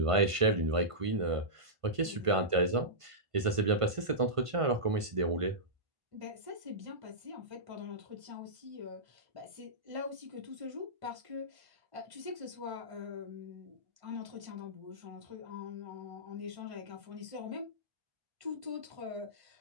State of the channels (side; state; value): left; late; 1.5 ms